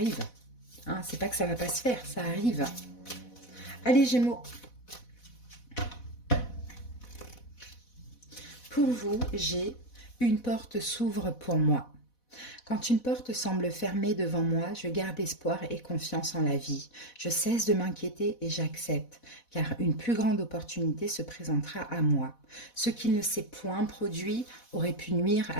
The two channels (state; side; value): late; right; 4.1 ms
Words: Hein, c'est pas que ça va pas se faire, ça arrive. Allez, Gémeaux. Pour vous, j'ai une porte s'ouvre pour moi. Quand une porte semble fermée devant moi, je garde espoir et confiance en la vie. Je cesse de m'inquiéter et j'accepte, car une plus grande opportunité se présentera à moi. Ce qui ne s'est point produit aurait pu nuire